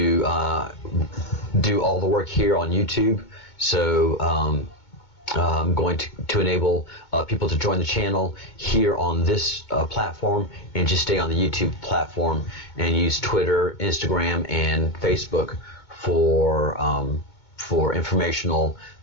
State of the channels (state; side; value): late; right; 2.2 ms